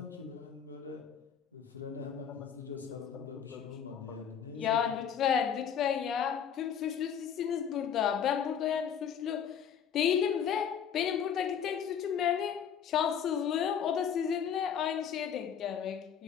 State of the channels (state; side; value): quieter; right; 8.1 dB